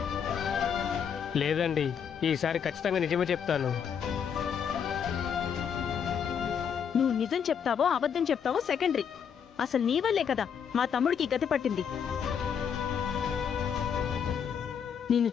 లేదండి, ఈసారి ఖచ్చితంగా నిజమే చెప్తాను. నువ్వు నిజం చెప్తావో అబద్ధం చెప్తావో సెకండరీ. అసలు నీ వల్లే కదా మా తమ్ముడికి గతి పట్టింది. నిన్ను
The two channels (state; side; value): quieter; right; 7.5 dB